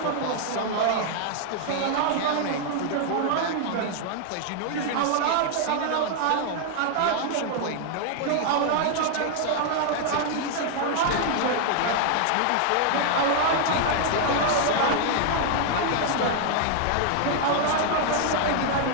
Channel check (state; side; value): different; both; correlation 0.00